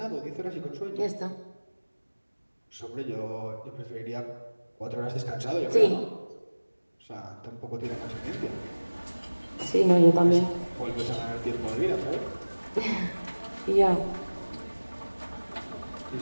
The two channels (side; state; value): both; inverted; correlation -1.00